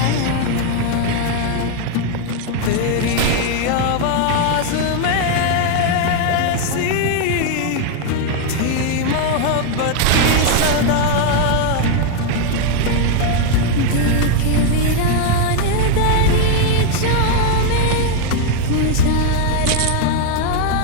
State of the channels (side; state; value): both; different; correlation 0.01